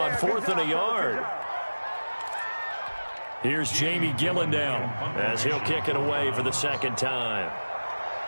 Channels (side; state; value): both; inverted; correlation -1.00